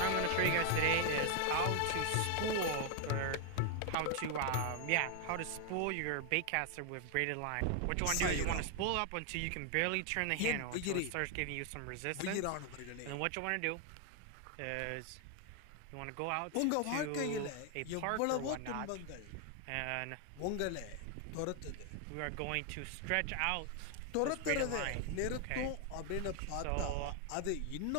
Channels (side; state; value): both; different; correlation 0.00